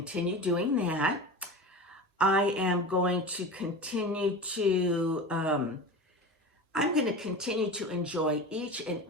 doing that. I am going to continue to, enjoy each and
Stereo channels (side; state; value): both; normal; correlation 0.30